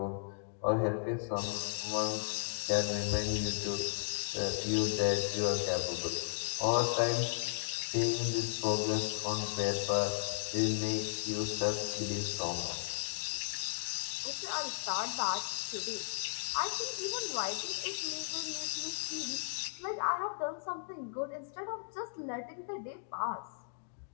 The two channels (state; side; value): silent; right; digital silence